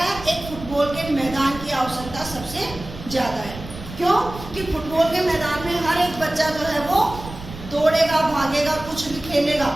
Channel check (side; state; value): right; noise; rumble, 13 dB below the sound